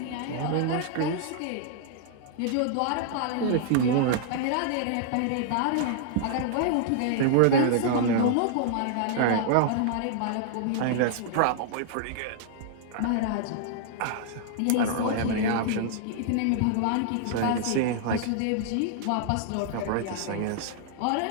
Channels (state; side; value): different; both; correlation -0.01